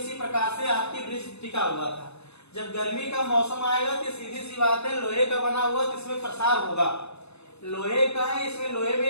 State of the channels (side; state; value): right; late; 0.80 ms